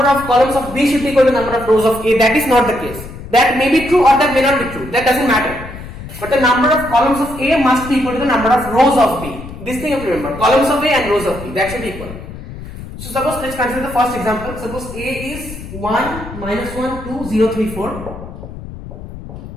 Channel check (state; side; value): noise; left; rumble, 12 dB below the sound